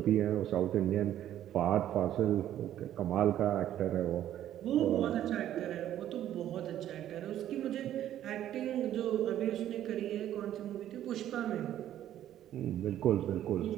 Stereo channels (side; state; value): left; quieter; 11.8 dB